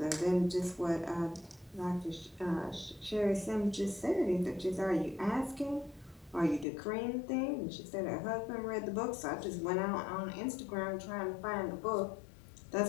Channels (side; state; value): right; drops out; at 6.7 s